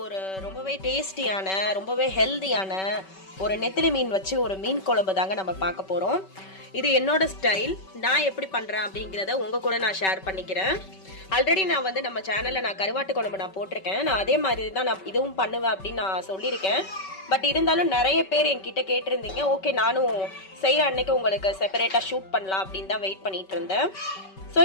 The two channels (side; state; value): right; late; 5.2 ms